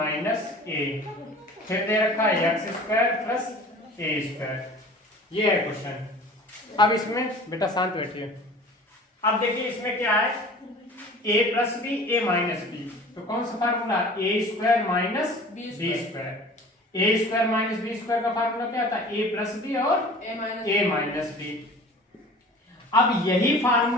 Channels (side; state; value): both; normal; correlation 0.44